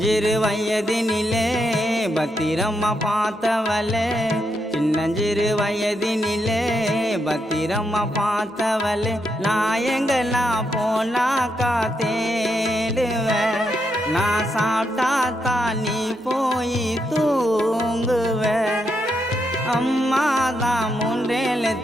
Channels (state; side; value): normal; both; correlation 0.81